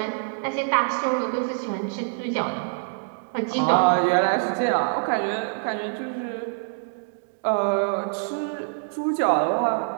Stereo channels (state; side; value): silent; left; digital silence